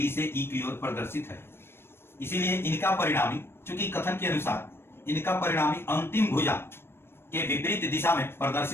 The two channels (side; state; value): right; late; 0.12 ms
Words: से E की ओर प्रदर्शित है। इसीलिए इनका परिणामी, चूंकि कथन के अनुसार इनका परिणामी अंतिम भुजा के विपरीत दिशा में